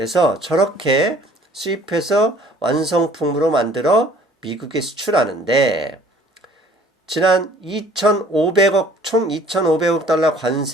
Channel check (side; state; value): both; normal; correlation 0.54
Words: 저렇게 수입해서 완성품으로 만들어 미국에 수출하는데 지난 2,500억, 총 2,500억 달러